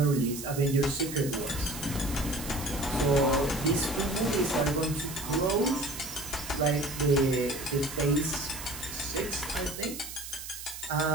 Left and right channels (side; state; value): right; noise; hiss, 10 dB below the sound